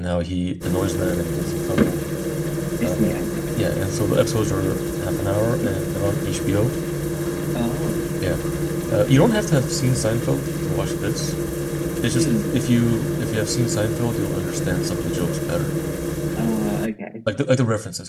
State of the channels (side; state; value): both; identical; correlation 1.00